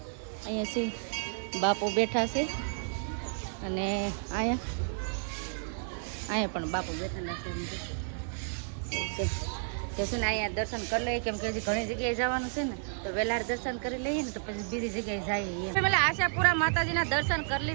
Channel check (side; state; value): left; silent; digital silence